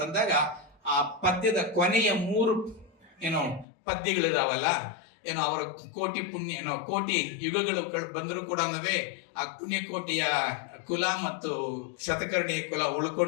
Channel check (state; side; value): drops out; right; at 3.7 s